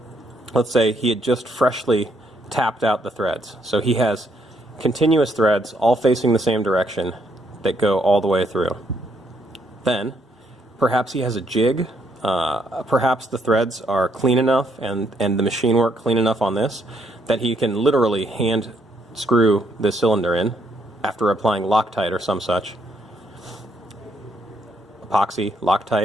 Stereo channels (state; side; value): normal; both; correlation 0.72